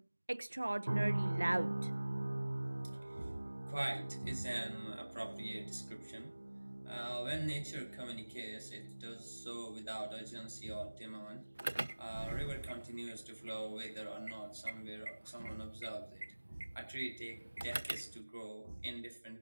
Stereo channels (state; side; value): inverted; both; correlation -1.00